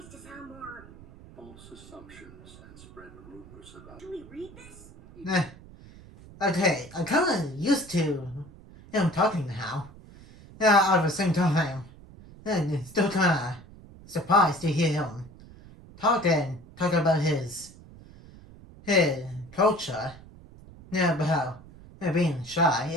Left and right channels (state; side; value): noise; right; rumble, 20 dB below the sound